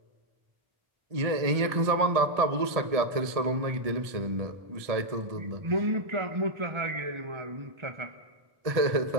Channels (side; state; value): left; late; 1.7 ms